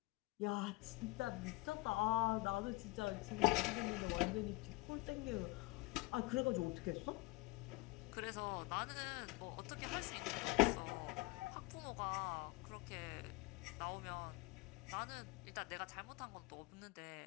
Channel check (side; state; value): right; quieter; 22.8 dB